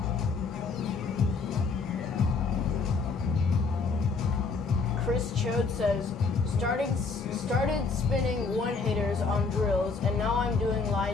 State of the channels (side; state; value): right; quieter; 4.5 dB